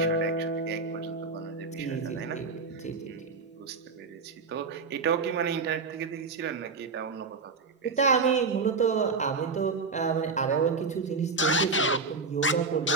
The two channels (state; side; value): quieter; left; 4.3 dB